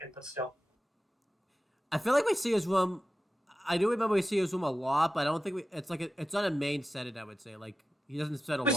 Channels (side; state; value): both; normal; correlation 0.93